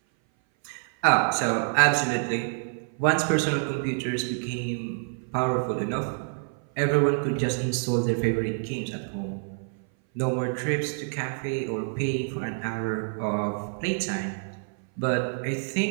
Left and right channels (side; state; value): left; silent; 58 dB below the other